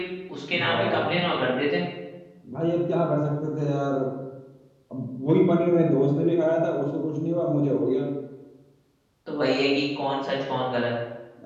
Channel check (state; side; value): identical; both; correlation 1.00